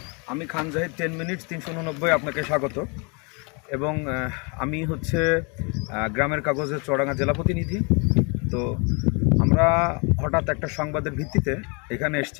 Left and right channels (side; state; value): right; quieter; 32.5 dB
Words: আমি খান জাহিদ 10 মিনিট 389 আপনাকে স্বাগত। এবং আমি হচ্ছে গ্রামের কাগজের চুয়াডাঙ্গা জেলা প্রতিনিধি। তো আমরা হঠাৎ একটা সংবাদের ভিত্তিতে এখানে